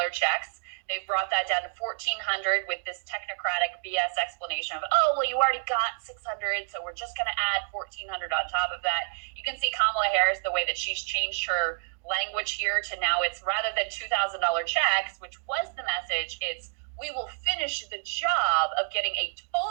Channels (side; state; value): left; silent; digital silence